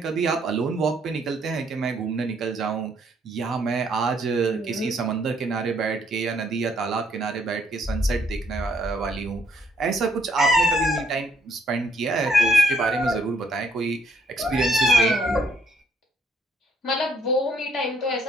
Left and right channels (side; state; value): both; normal; correlation 0.69